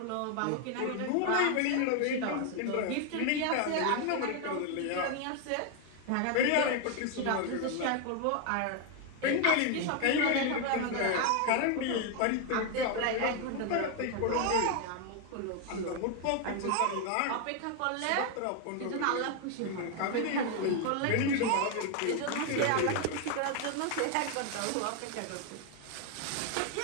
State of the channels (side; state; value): both; different; correlation 0.01